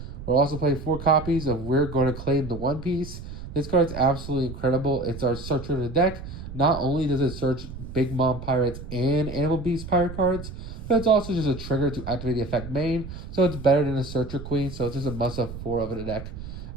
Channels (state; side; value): noise; right; rumble, 11 dB below the sound